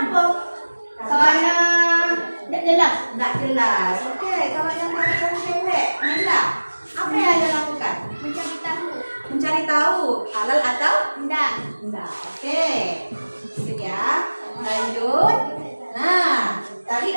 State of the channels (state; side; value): inverted; both; correlation -1.00